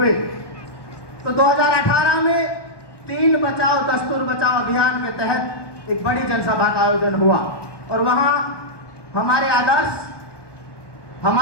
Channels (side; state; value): right; late; 1.2 ms